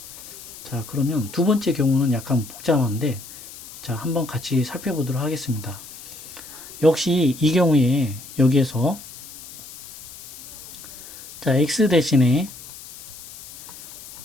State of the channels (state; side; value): noise; left; hiss, 16 dB below the sound